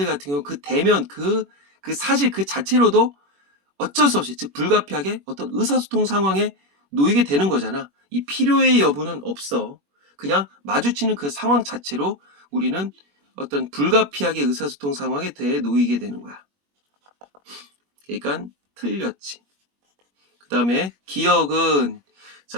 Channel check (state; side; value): late; left; 21 ms